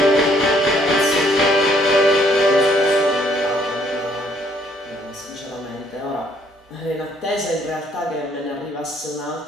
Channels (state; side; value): normal; both; correlation 0.65